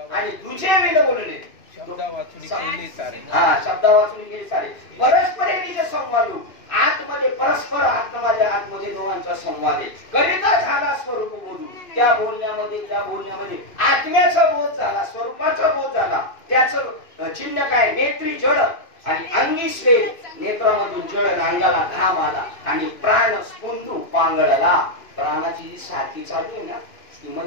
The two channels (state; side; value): late; right; 2.6 ms